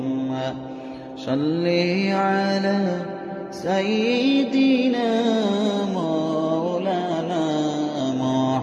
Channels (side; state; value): both; identical; correlation 1.00